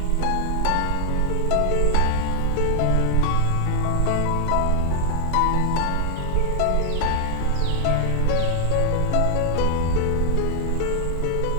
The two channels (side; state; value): both; different; correlation 0.00